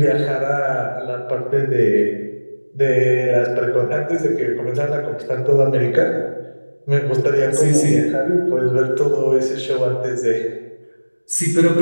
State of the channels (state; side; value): inverted; both; correlation -1.00